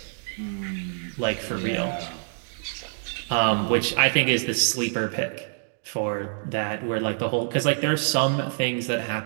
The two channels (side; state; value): left; silent; digital silence